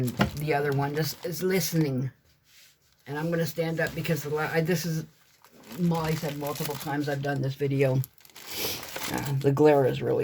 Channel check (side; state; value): both; identical; correlation 1.00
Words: the other one just is listening. And I'm going to stand up because this is, Molly said multiple times I've done this video. The glare is